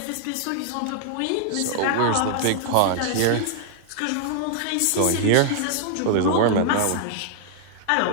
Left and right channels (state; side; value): different; both; correlation 0.00